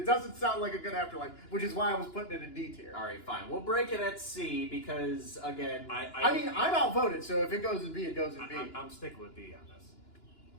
doesn't sound like a good afterlife, which is why I was putting it in D tier. All right, fine. We'll break it at C because, again, I mean, I'm outvoted, so if it goes in B, it goes in B. I'm sticking with B on this.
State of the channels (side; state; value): right; late; 2.9 ms